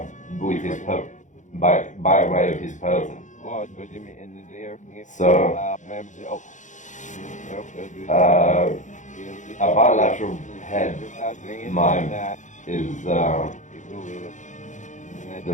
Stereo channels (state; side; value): late; right; 0.36 ms